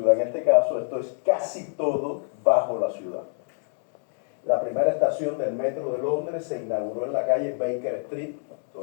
En este caso, esto es casi todo bajo la ciudad. La primera estación del metro de Londres se inauguró en la calle Baker Street,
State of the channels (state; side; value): silent; right; 61 dB below the other